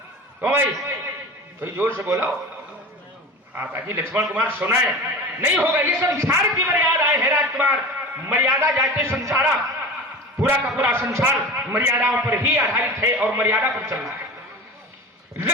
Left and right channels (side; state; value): both; normal; correlation 0.33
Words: तो भाई कोई जोर से बोलो, हाँ ताकि लक्ष्मण कुमार सुनाए। नहीं होगा, ये संसार की मर्यादाएं है राजकुमार, मर्यादा जाते संसारा, पूरा का पूरा संसार मर्यादाओं पर ही आधारित है और मर्यादा पर चल रहा है।